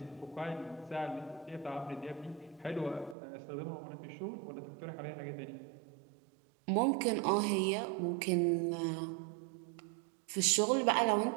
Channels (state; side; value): drops out; left; at 3.2 s